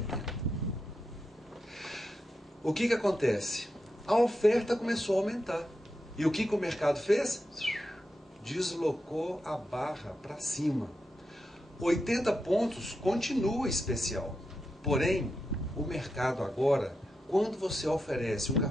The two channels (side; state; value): both; normal; correlation 0.87